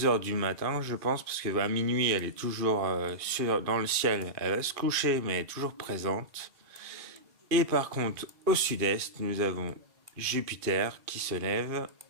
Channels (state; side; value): late; left; 2.5 ms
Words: heures du matin, je pense, parce que à minuit, elle est toujours dans le ciel. Elle va se coucher, mais elle est toujours présente. Et par contre, au sud-est, nous avons Jupiter qui se lève.